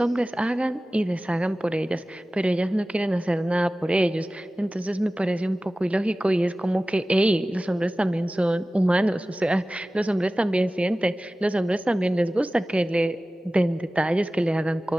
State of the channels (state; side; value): normal; both; correlation 0.96